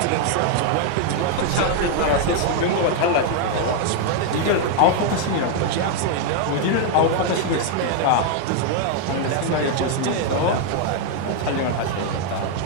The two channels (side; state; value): both; different; correlation 0.00